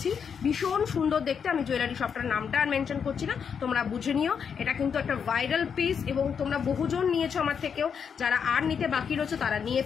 ভীষণ সুন্দর দেখতে। আমি জুয়েলারি শপটার নামটা আর মেনশন করছি না, তোমরা বুঝে নিও। এটা কিন্তু একটা ভাইরাল পিস, এবং তোমরা বহুজন নিয়েছো আমার থেকেও, যারা আর নিতে বাকি রয়েছে তারা নিয়ে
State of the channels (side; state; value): right; quieter; 6.9 dB